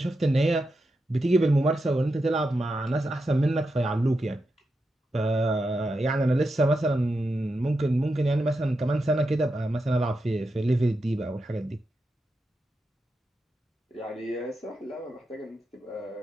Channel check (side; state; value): both; normal; correlation 0.88